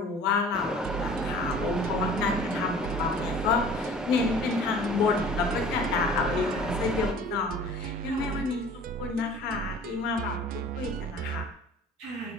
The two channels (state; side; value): normal; both; correlation 0.47